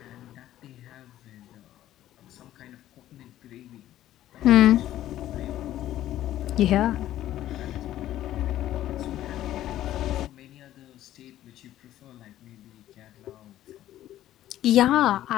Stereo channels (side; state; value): right; quieter; 13.2 dB